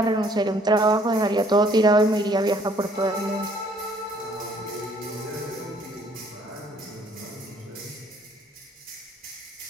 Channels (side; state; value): both; normal; correlation 0.61